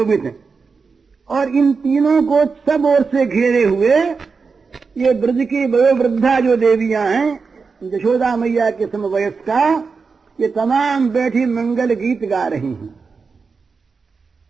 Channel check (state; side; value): quieter; left; 4.9 dB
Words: हैं, और इन तीनों को सब ओर से घेरे हुए ये ब्रज की वयोवृद्धा जो देवियां हैं, यशोदा मैया के समवयस्का, ये तमाम बैठी मंगल गीत गा रही हैं।